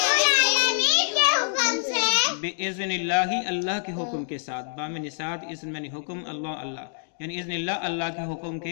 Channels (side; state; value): right; silent; digital silence